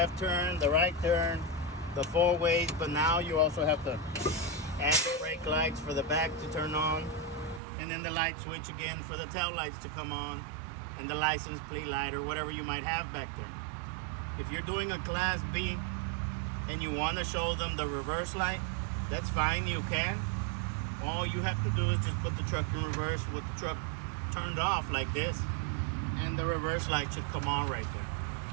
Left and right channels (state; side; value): drops out; left; at 7.6 s